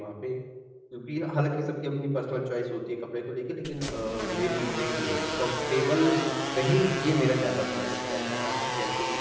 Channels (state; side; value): identical; both; correlation 1.00